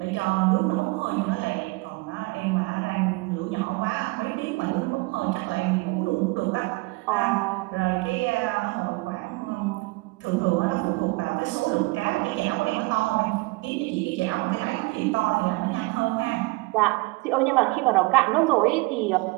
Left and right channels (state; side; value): quieter; left; 24.8 dB